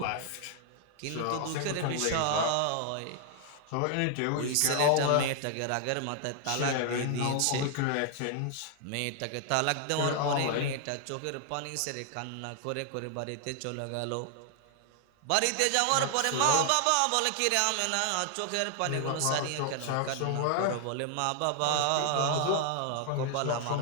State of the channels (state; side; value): different; both; correlation 0.00